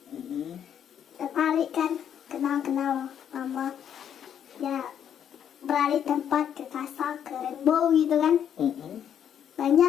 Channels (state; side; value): quieter; right; 9.1 dB